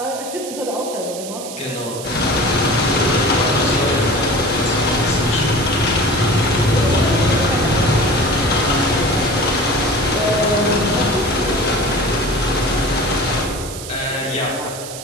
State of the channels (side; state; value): right; noise; hiss, 11 dB below the sound